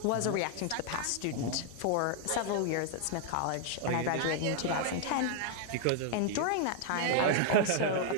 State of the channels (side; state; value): both; different; correlation 0.00